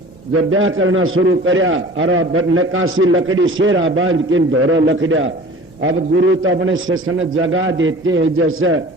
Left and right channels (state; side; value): normal; both; correlation 0.43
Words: जब ब्याह करना शुरू करया और नकाशी लकड़ी शेरा बांध के धोरो लकड़िया। अब गुरु तो अपने शिष्य जगा देते हैं, जैसे